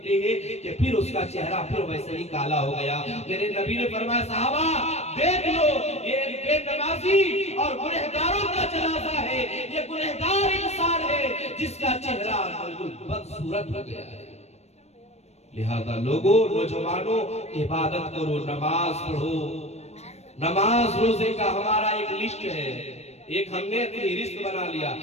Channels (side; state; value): right; late; 0.31 ms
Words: हैं कि फिर उसका चेहरा फिर वैसे ही काला हो गया। मेरे नबी ने फरमाया, सहाबा देख लो, ये बेनमाजी और गुनहगारों का जनाजा है, ये गुनहगार इंसान है जिसका चेहरा बदसूरत हो गया है। लिहाजा लोगों, नौजवानों, इबादत करो, नमाज पढ़ो। नमाज रोजे का हमारा एक लिस्ट है, एक हमने अपनी रिश्त बना लिया।